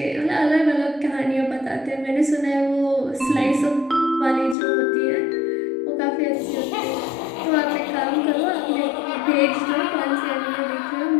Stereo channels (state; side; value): drops out; right; at 4.5 s